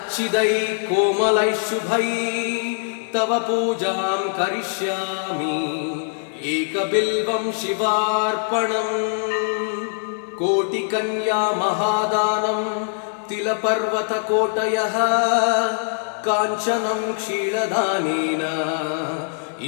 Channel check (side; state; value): right; silent; 64 dB below the other